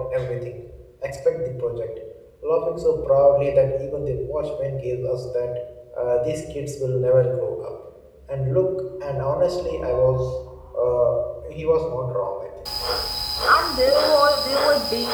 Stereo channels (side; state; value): both; identical; correlation 1.00